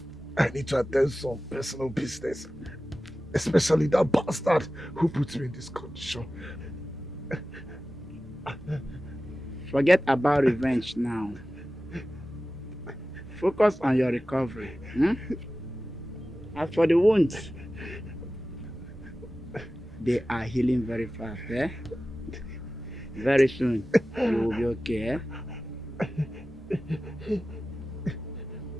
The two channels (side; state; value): both; normal; correlation 0.95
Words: I need to attend some personal business. Especially that bastard who put me in this condition. Forget about revenge now. Focus on your recovery. As for the wounds, they are healing very fast. Very soon, you will be okay.